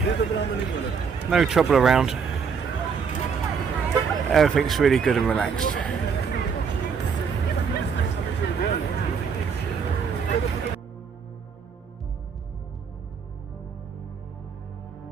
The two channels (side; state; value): left; quieter; 6.1 dB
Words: no trouble around. Everything's really good and relaxed.